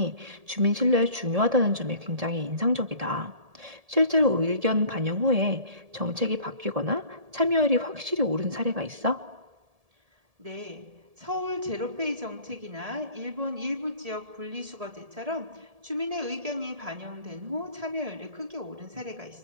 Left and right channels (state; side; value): late; left; 1.7 ms